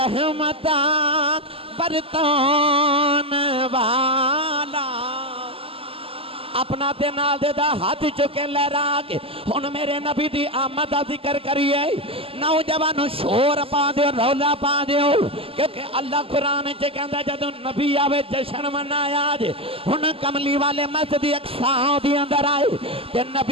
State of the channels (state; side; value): late; left; 0.27 ms